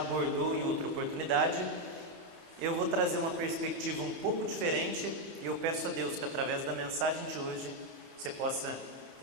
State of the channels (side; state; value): left; late; 30 ms